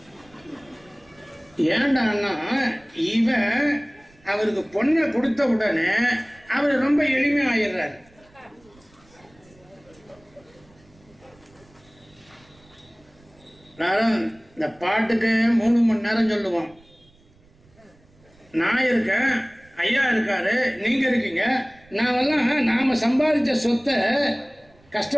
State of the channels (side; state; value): right; noise; rumble, 29 dB below the sound